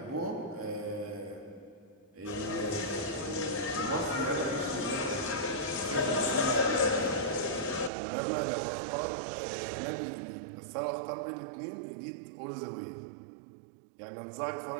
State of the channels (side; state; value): left; drops out; at 7.9 s